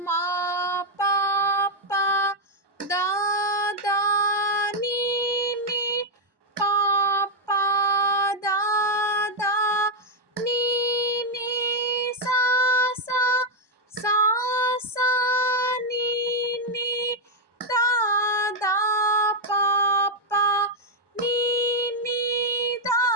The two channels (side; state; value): left; late; 1.2 ms